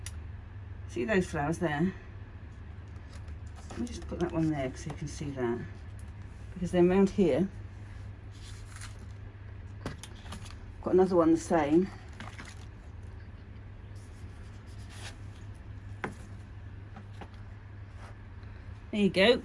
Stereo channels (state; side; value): identical; both; correlation 1.00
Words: See those flowers there? Let me just put that one there so you can see that. Because then round here, got another one the same. There you go.